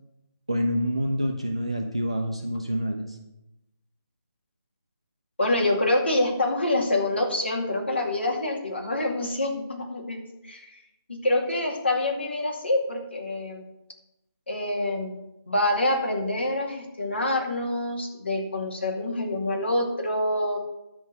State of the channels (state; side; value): inverted; both; correlation -0.69